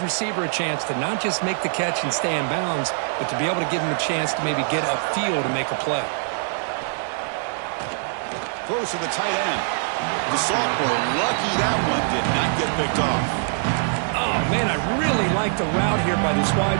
a chance to not just make the catch and stay in bounds, but to be able to give him a chance to maybe get upfield and make a play. Throws to the tight end. The sophomore, lucky that one did not get picked off. Oh, man, I really like the route here by this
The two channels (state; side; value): silent; left; digital silence